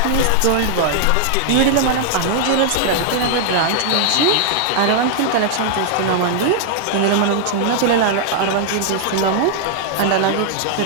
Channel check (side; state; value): both; different; correlation -0.01